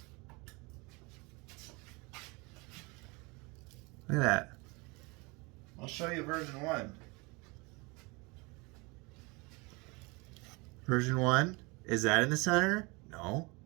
Look at that. I'll show you version 1. Version 1. Is that in the center? No.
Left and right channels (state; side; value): quieter; left; 27.1 dB